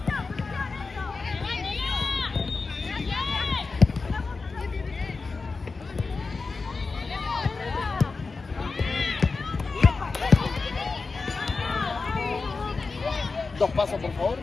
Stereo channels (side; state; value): right; quieter; 4.2 dB